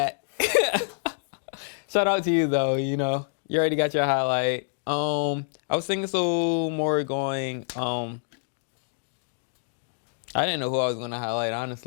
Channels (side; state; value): right; silent; digital silence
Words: Shout out to you though. You know, you already got your highlight. I was thinking so more going. I didn't know who I was going to highlight,